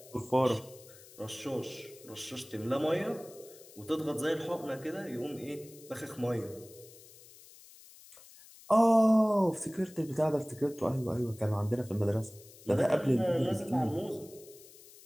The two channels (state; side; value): noise; left; hiss, 21 dB below the sound